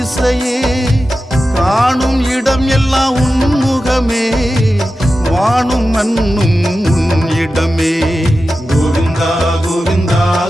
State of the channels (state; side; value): normal; both; correlation 0.93